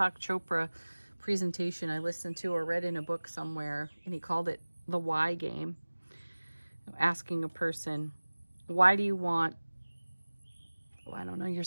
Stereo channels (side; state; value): both; inverted; correlation -1.00